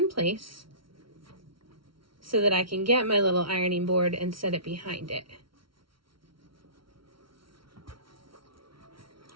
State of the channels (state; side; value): late; left; 0.74 ms